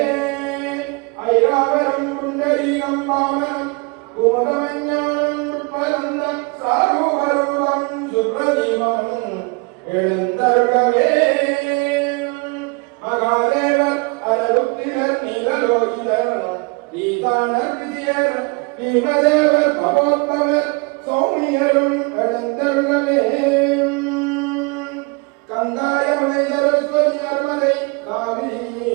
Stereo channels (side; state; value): left; quieter; 30.0 dB